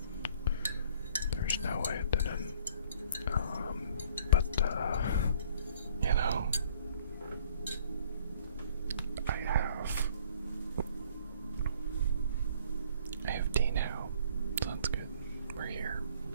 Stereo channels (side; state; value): both; inverted; correlation -0.56